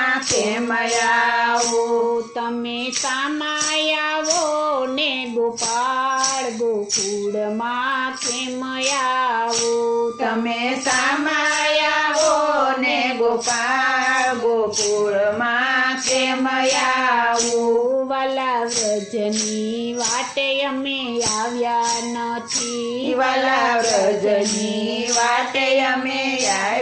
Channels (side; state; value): both; identical; correlation 1.00